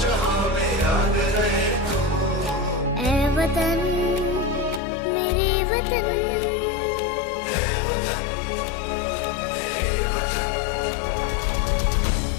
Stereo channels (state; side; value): drops out; right; at 4.8 s